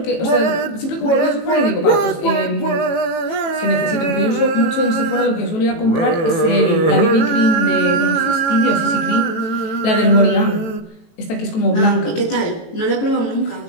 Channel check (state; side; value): late; right; 18 ms